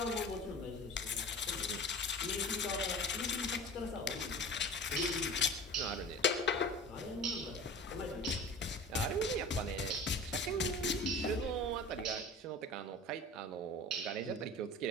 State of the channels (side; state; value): both; normal; correlation 0.37